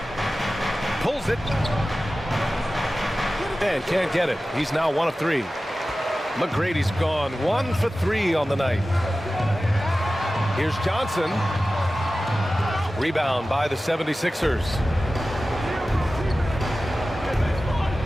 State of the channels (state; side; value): normal; both; correlation 0.95